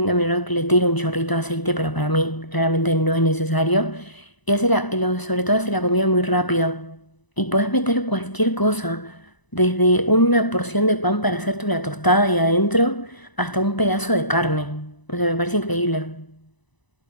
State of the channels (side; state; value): right; late; 1.0 ms